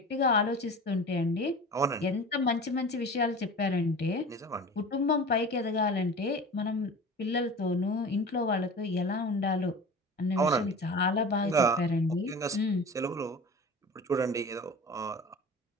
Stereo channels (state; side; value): normal; both; correlation 0.37